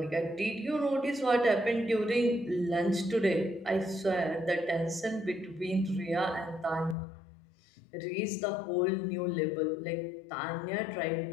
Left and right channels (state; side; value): drops out; right; at 7.0 s